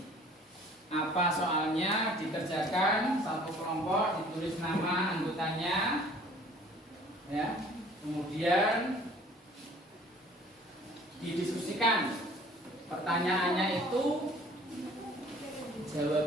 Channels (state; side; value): normal; both; correlation 0.52